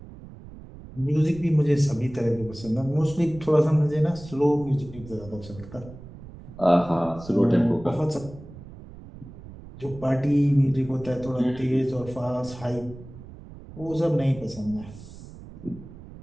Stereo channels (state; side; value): noise; right; rumble, 16 dB below the sound